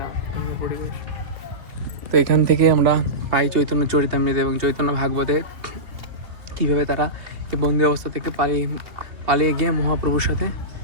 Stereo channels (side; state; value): left; late; 2.6 ms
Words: সুন্দর পরিবেশ। তো এখান থেকে আমরা পাই চৈতন্য চরিতামৃত এবং চৈতন্য ভাগবতে কীভাবে তারা এই বন্দি অবস্থা থেকে পালিয়ে গিয়ে মহাপ্রভুর সাথে